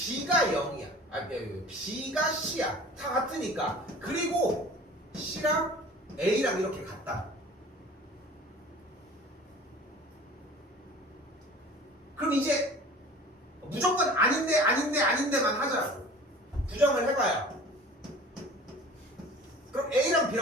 0이야. B가 C야. 다 같으니까. 그리고 C랑 A랑 이렇게 같다. 그럼 이제 무조건 아닌데만 하자고. 부정을 해봐요. 그럼 A랑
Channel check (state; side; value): normal; both; correlation 0.44